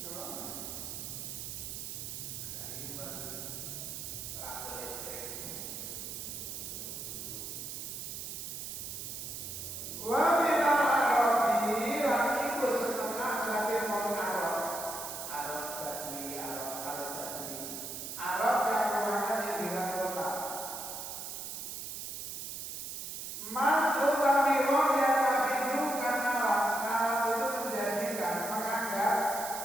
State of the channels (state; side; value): noise; right; hiss, 7 dB below the sound